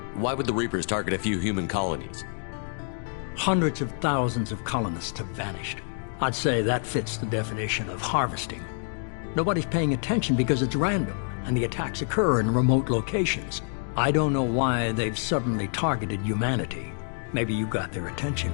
Why would the Reapers target a few human colonies? Hundreds of thousands of colonists have vanished. I'd say that fits the definition of harvesting. Nobody's paying attention because it's random, and the attacks occur in remote locations. I don't know why they've suddenly targeted humanity. Maybe you got their attention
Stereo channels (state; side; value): silent; right; 60 dB below the other